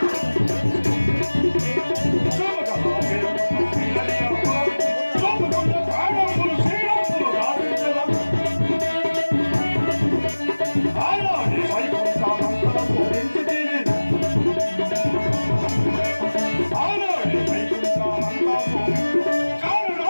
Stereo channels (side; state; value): both; inverted; correlation -1.00